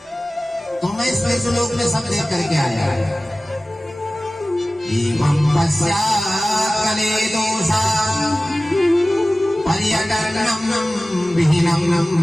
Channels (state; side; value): normal; both; correlation 0.97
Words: तो मैं इस श्लोक में सब देख करके आया। एवं पश्चात्कले दोषा पर्यटनम विहीनम